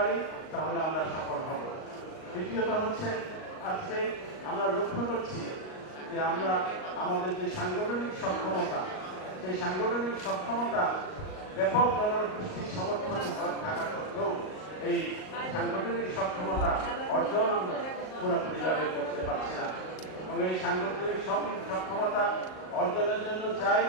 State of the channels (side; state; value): right; late; 38 ms